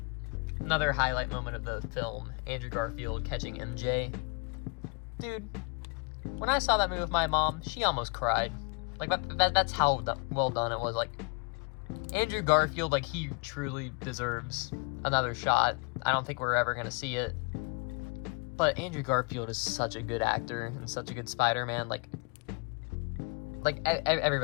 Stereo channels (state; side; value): quieter; right; 31.9 dB